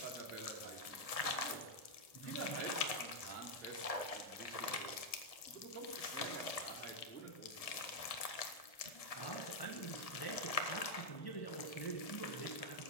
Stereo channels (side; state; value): right; late; 1.7 ms